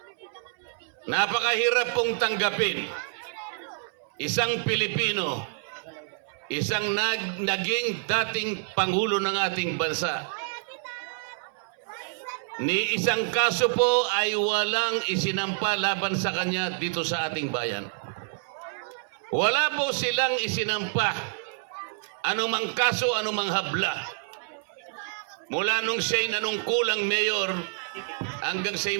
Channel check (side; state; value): left; silent; 60 dB below the other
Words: Napakahirap pong tanggapin isang Pilipino, isang naging dating Pangulo ng ating bansa. Ni isang kaso po ay walang isinampa laban sa kanya dito sa ating bayan. Wala po silang isinampa anumang kaso, anumang habla. Mula nung siya'y nanungkulang mayor hanggang